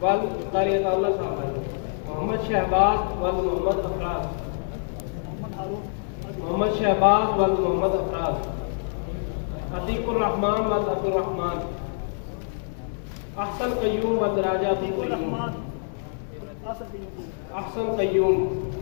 वल तारियतुल्लाह साहब, मोहम्मद शहबाज वल मोहम्मद अफराज, मोहम्मद शहबाज वल मोहम्मद अफराज, अतीकुर रहमान वल अब्दुल रहमान, अहसन कय्यूम वल राजा अब्दुल रहमान, अहसन कय्यूम,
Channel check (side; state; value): right; silent; digital silence